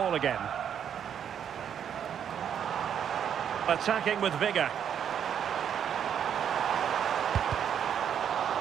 again. Attacking with vigour.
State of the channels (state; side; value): quieter; left; 8.7 dB